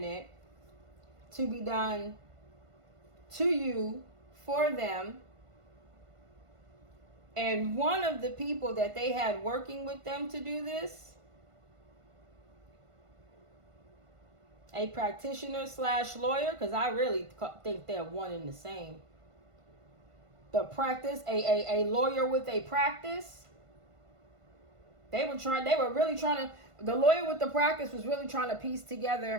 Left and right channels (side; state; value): left; late; 1.5 ms